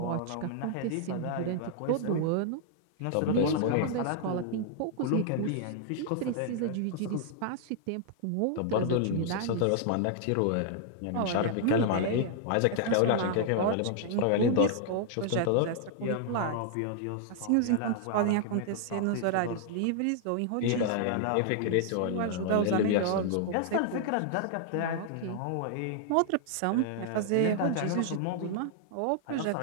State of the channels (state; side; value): different; both; correlation -0.01